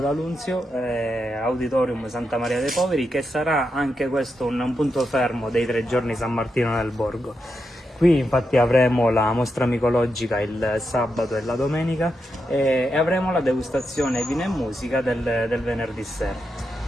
Auditorium Santa Maria dei Poveri, che sarà anche questo un punto fermo dei 3 giorni San Martino nel Borgo. Qui infatti avremo la mostra micologica il sabato e la domenica e avremo la degustazione vino e musica del venerdì sera.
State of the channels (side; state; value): both; normal; correlation 0.85